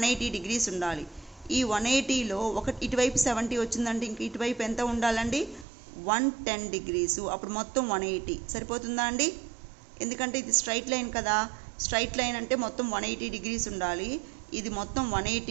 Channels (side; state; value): left; drops out; at 5.7 s